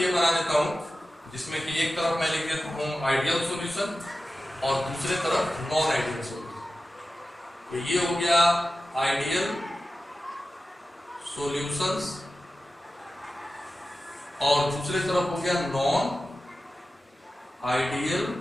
बना देता हूं जिसमें कि एक तरफ मैं लिख देता हूं आइडियल सॉल्यूशन और दूसरे तरफ नॉन आइडियल सॉल्यूशन। तो ये हो गया आइडियल सॉल्यूशंस और दूसरे तरफ हो गया नॉन आइडियल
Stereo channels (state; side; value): normal; both; correlation 0.94